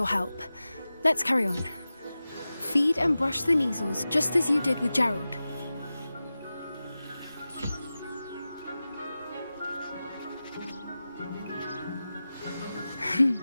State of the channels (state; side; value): inverted; both; correlation -0.95